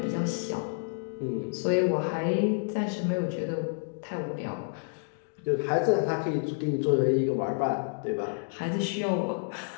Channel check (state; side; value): silent; right; digital silence